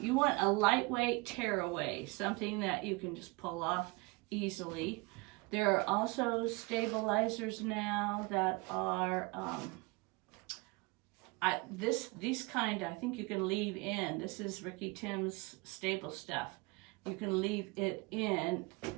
want a lightweight tearaway, something that you can just pull off easily. There are also stabilizers now that are, these kind I think you can leave in. This is Ricky Tim's stable stuff. You can leave it in,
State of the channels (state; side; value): quieter; left; 26.3 dB